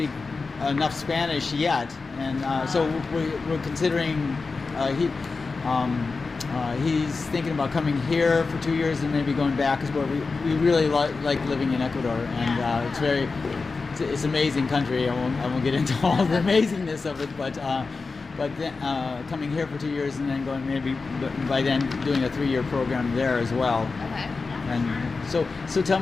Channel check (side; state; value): right; quieter; 4.2 dB